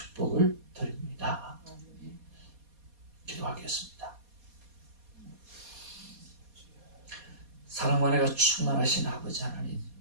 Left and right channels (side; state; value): left; late; 4.2 ms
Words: 드립니다. 기도하겠습니다. 사랑과 은혜가 충만하신 아버지 하나님,